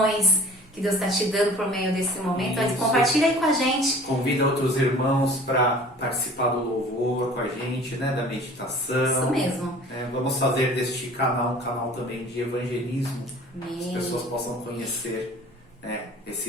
que Deus está te dando por meio desse momento. Isso. Compartilha aí com a gente. Convida outros irmãos para participar do louvor com a gente, né? Da meditação. Isso mesmo. Vamos fazer deste canal um canal também de evangelismo. Amém. Que as pessoas possam conhecer, né,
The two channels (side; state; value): both; normal; correlation 0.46